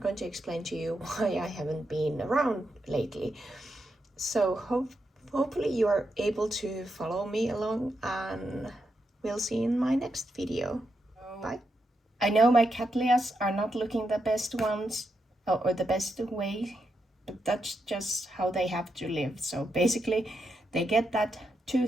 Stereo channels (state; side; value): normal; both; correlation 0.84